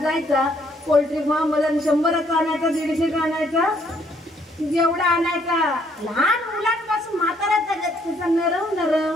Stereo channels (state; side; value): normal; both; correlation 0.67